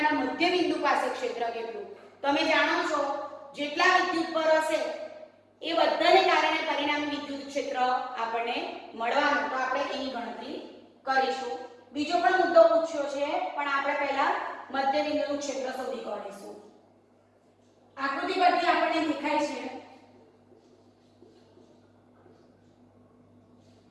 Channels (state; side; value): identical; both; correlation 1.00